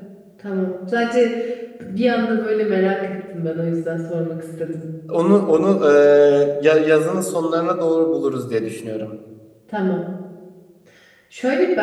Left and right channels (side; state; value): both; identical; correlation 1.00